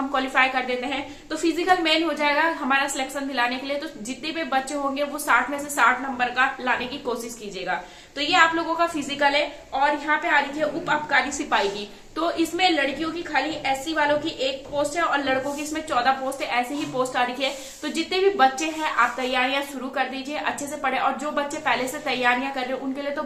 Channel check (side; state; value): both; identical; correlation 1.00